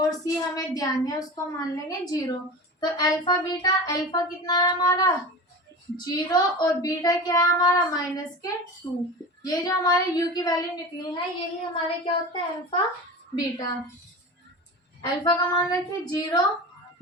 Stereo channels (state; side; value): normal; both; correlation 0.31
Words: c हमें ध्यान है उसको मान लेंगे 0। तो अल्फा बीटा, अल्फा कितना है हमारा 0 और बीटा क्या है हमारा माइनस के 2। ये जो हमारे u की वैल्यू निकली है यही हमारे क्या होता है अल्फा बीटा। अल्फा का मान रखिए 0,